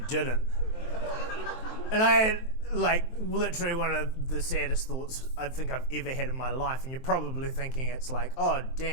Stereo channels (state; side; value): late; right; 23 ms